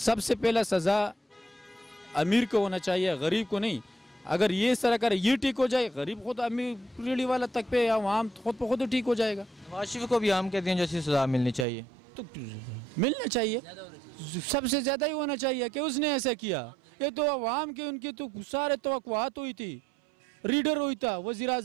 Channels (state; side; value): drops out; left; at 11.7 s